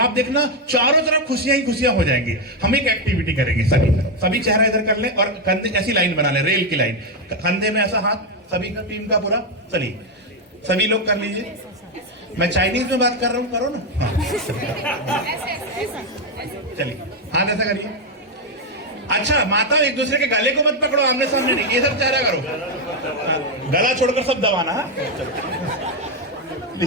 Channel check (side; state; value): both; normal; correlation 0.04